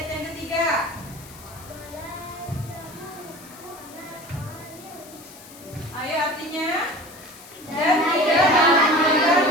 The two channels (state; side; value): noise; left; hiss, 19 dB below the sound